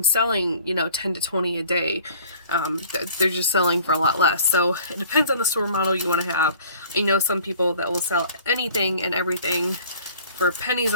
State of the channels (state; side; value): inverted; both; correlation -0.50